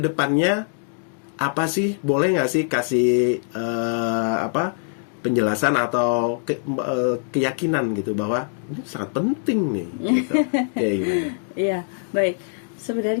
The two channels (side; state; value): right; silent; digital silence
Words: apa sih, boleh nggak sih kasih penjelasan atau keyakinan gitu bahwa ini sangat penting nih gitu. Iya, baik.